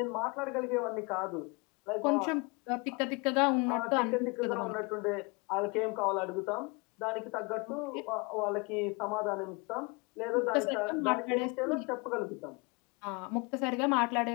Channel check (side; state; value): right; quieter; 29.1 dB